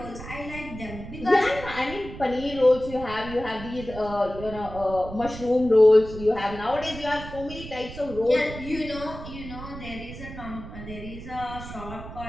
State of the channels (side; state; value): right; noise; rumble, 12 dB below the sound